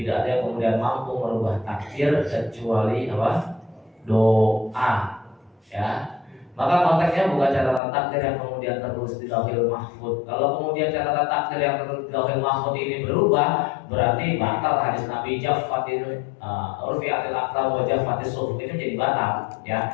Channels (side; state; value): right; drops out; at 7.8 s